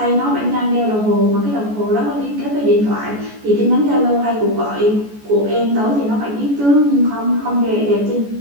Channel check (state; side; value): late; left; 14 ms